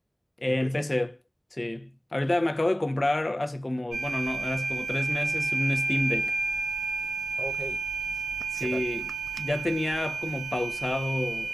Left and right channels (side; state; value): both; normal; correlation 0.93